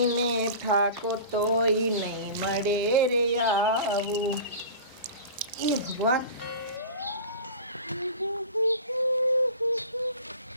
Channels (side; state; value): both; inverted; correlation -0.36